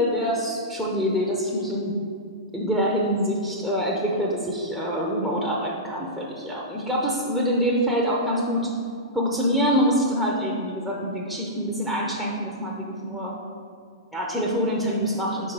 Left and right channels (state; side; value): normal; both; correlation -0.12